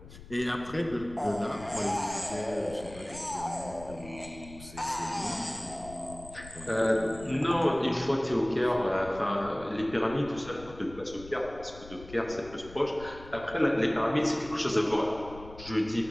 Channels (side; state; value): left; noise; rumble, 17 dB below the sound